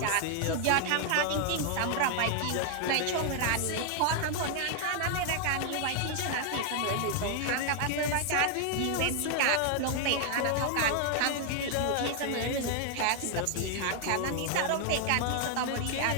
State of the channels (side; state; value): both; different; correlation 0.00